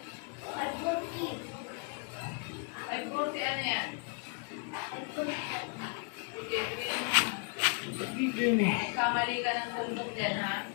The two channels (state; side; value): quieter; right; 39.4 dB